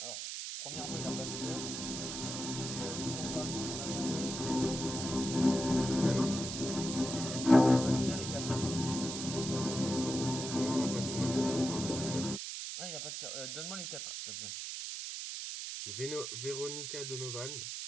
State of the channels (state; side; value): noise; right; hiss, 5 dB below the sound